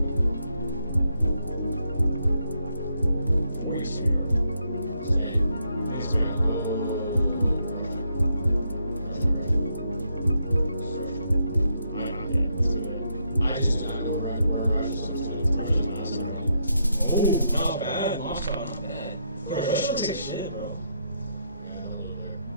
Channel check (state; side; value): inverted; both; correlation -0.78